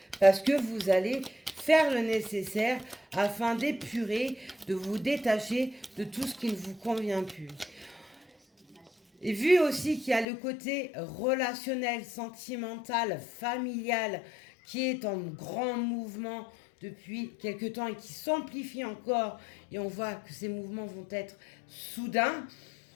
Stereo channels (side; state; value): right; drops out; at 10.2 s